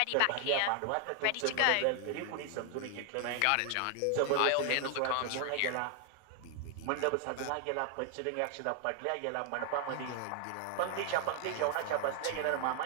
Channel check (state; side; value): different; both; correlation 0.00